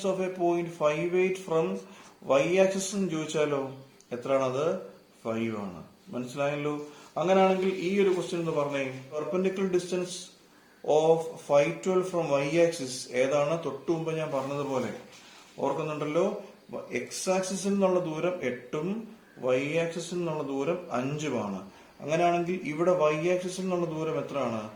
of a point 5/8 from y axis ചോദിച്ചാലോ എത്രയാണത്? 5 ആണ്. മനസ്സിലായല്ലോ? അങ്ങനെയാണെങ്കിൽ ഈ ഒരു ക്വസ്റ്റ്യൻ എന്ന് പറഞ്ഞേ, perpendicular distance of 512 from y axis ഏതാണ്? തൊട്ടു മുമ്പ് ഞാൻ പറഞ്ഞതുപോലെ ഓർക്കുന്നുണ്ടല്ലോ, എക്സ് ആക്സിസിൽ നിന്നുള്ള ദൂരം 8ഉം y ആക്സിസിൽ നിന്നുള്ള ദൂരം 5ഉമാണ്. അങ്ങനെയാണെങ്കിൽ ഇവിടെ y ആക്സിസിൽ നിന്നുള്ള ദൂരം എത്രയാണ്?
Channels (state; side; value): identical; both; correlation 1.00